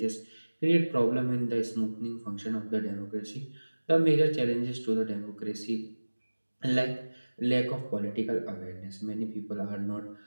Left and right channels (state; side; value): inverted; both; correlation -1.00